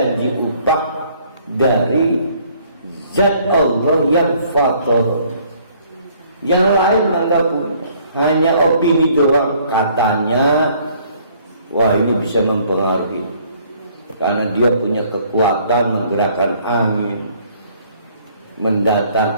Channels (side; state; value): both; inverted; correlation -0.61